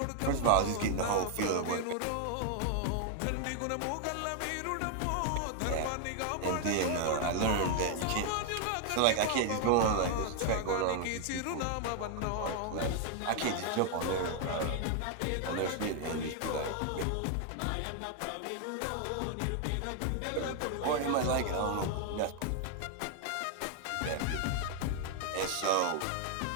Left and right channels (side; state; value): both; different; correlation 0.00